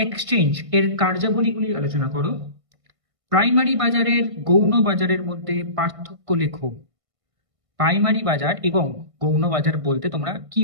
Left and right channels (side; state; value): left; late; 1.5 ms